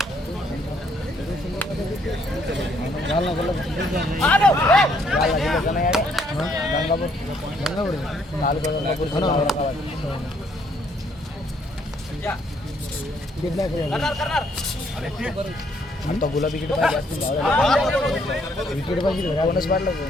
आता गुलाबी विकेट पाहिजे विकेट पाहिजे कोणच पाडलं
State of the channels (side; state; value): both; normal; correlation 0.69